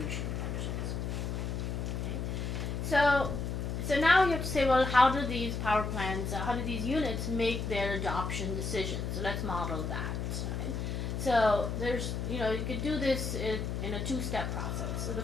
functions. Okay, so now you have to say, well, how do these power plants, how do these units make their adoption decisions? So let's model that. Right? So there's, you could do this in a two-step process. So the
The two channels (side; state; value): left; noise; hum, 3 dB below the sound